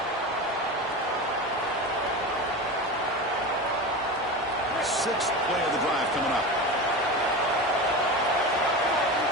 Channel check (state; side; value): normal; both; correlation 0.26